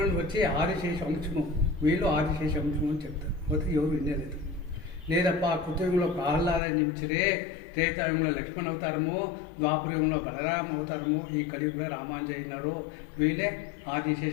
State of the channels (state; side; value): drops out; right; at 6.6 s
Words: వచ్చి ఆదిశేష అంశము, వీళ్ళు ఆదిశేష అంశము అని చెప్తారు. పోతే ఎవరు వినేలేదు. లేదప్ప కృతయుగంలో ప్రహ్లాదని నిమిచిరే, త్రేతాయుగంలో లక్ష్మణ్ అవతారము, ద్వాపరయుగంలో బలరామ అవతారము, ఈ కలియుగంలో రామానుజ అయినారు, వీళ్ళే